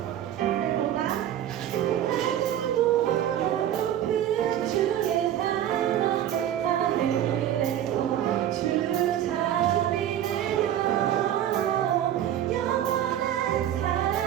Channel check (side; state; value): left; quieter; 11.2 dB